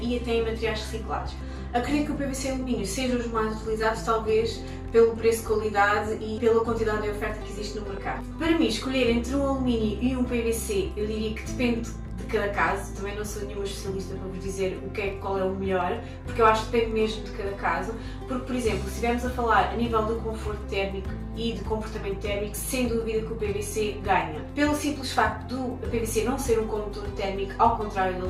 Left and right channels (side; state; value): both; identical; correlation 1.00